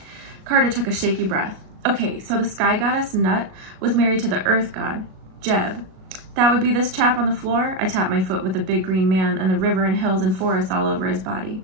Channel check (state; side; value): late; left; 37 ms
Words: Carter took a shaky breath. Okay, so the sky goddess, Nut, was married to the earth god, Jeb. That would be this chap on the floor? I tapped my foot with the big green man and the river and hills and forests all over his body.